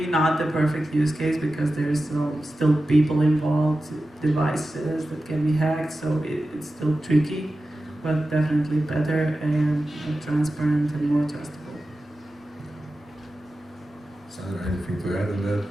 not the perfect use case because there's still people involved, devices that can be hacked, so it's still tricky, but definitely better and more transparent and more trustable. Sandra, anything to add on that?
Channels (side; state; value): both; normal; correlation 0.94